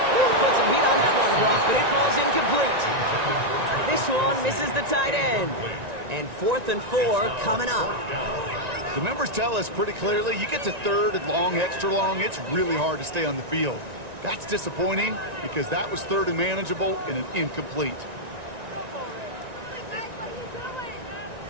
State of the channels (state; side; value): late; left; 1.9 ms